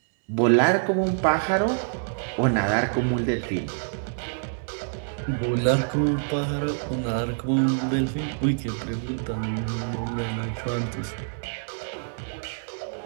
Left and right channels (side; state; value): left; silent; digital silence